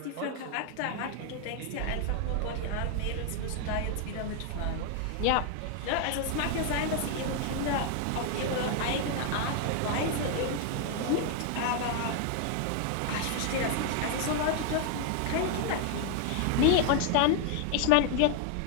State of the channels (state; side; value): different; both; correlation 0.00